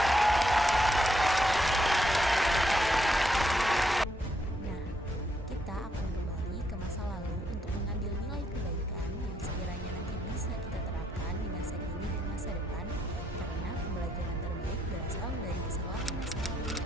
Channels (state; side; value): normal; both; correlation 0.76